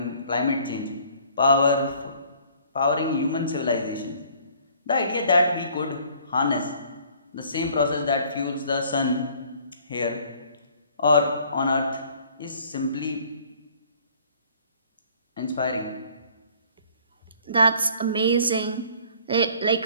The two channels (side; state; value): both; inverted; correlation -0.56